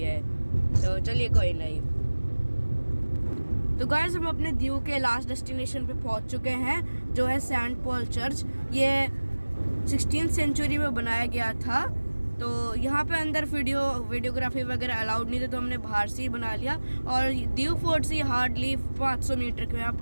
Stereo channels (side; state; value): both; inverted; correlation -1.00